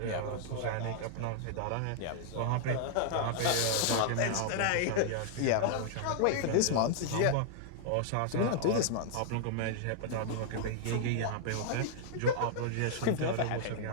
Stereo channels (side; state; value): both; different; correlation -0.01